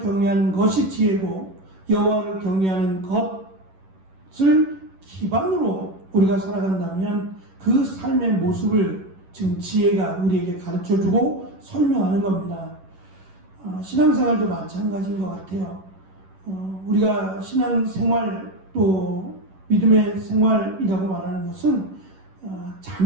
것이 지혜고, 여호와를 경외하는 것을 기반으로 우리가 살아간다면 그 삶의 모습을 지금 지혜가 우리에게 가르쳐주고 설명하는 겁니다. 신앙생활도 마찬가지인 것 같아요. 우리가 신앙생활 또 믿음의 생활이라고 말하는 것은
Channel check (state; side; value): late; left; 11 ms